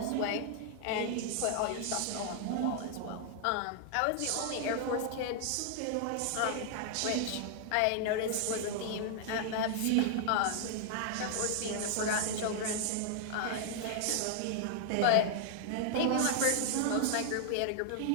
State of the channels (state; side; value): different; both; correlation 0.00